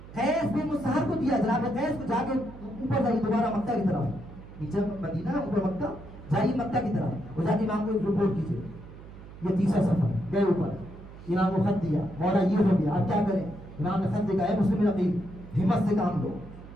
قیس بھی مصہر کو دیا. جناب قیس کو جا کے اوپر جائیے دوبارہ مکہ کی طرف، نیچے مدینہ اوپر مکہ، جائیے مکہ کی طرف اور جا کے امام کو رپورٹ کیجیے. یہ تیسرا سفر گئے اوپر، امام کو خط دیا، مولا یہ ہو گیا اب کیا کریں. امام نے خط لکھا ہے مسلم نقیب ہمت سے کام لو.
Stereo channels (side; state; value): right; noise; hum, 16 dB below the sound